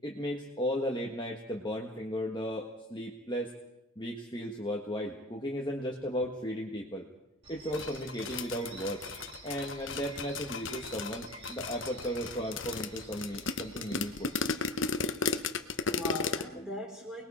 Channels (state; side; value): normal; both; correlation 0.37